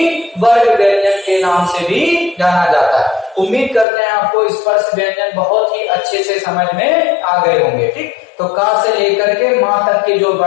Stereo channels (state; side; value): drops out; right; at 3.9 s